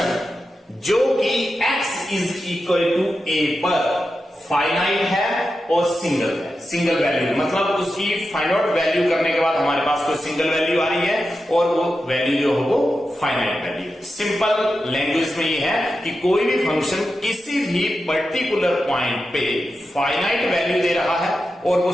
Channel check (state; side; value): normal; both; correlation 0.90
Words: जो कि x is equal to a पर फाइनाइट है और सिंगल है, सिंगल वैल्यू, मतलब उसकी फाइंड आउट वैल्यू करने के बाद हमारे पास कोई सिंगल वैल्यू आ रही है और वो वैल्यू जो है वो फाइनाइट वैल्यू है। सिंपल लैंग्वेज में ये है कि कोई भी फंक्शन किसी भी पर्टिकुलर पॉइंट पे फाइनाइट वैल्यू दे रहा है और वो